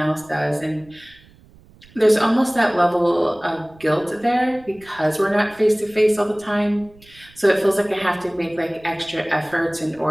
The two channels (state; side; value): noise; right; rumble, 26 dB below the sound